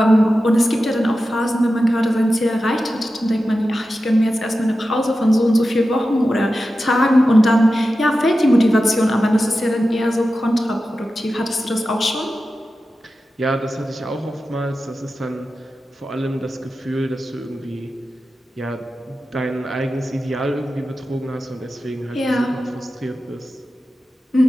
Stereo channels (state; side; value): normal; both; correlation 0.93